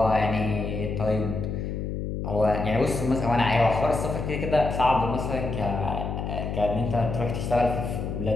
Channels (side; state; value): left; noise; hum, 4 dB below the sound